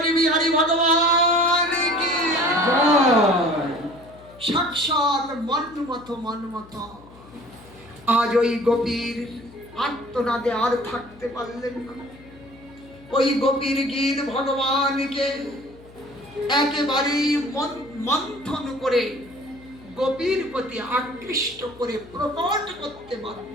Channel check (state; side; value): noise; left; hum, 22 dB below the sound